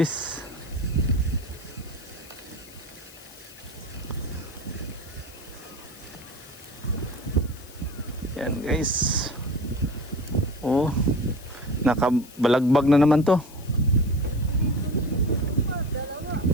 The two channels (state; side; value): noise; left; hiss, 20 dB below the sound